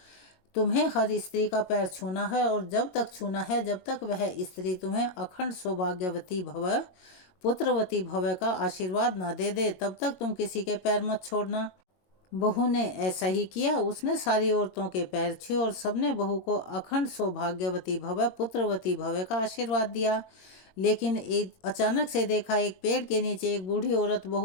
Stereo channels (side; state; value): right; late; 21 ms